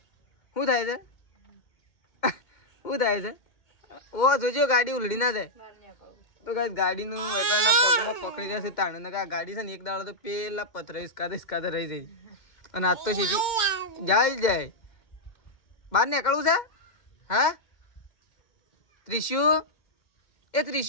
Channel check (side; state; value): right; late; 2.1 ms